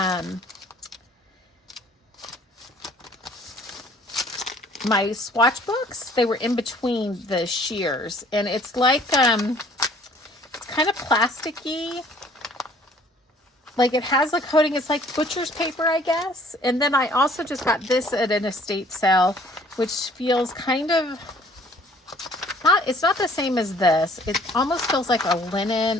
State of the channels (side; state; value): both; normal; correlation 0.57